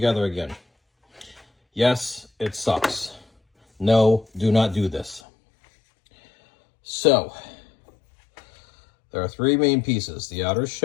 again. Yes, it sucks. No, do not do this. So, there are three main pieces: the outer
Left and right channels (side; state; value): right; drops out; at 5.2 s